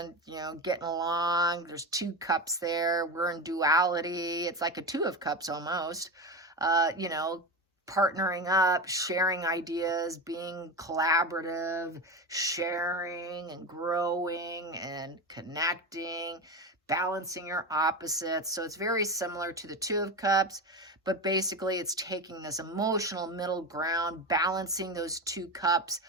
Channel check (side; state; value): both; normal; correlation 0.21